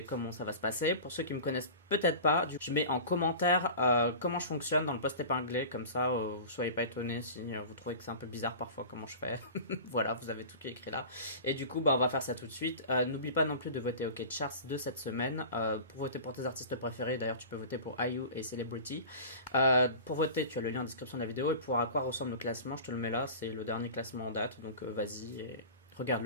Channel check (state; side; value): inverted; both; correlation -0.36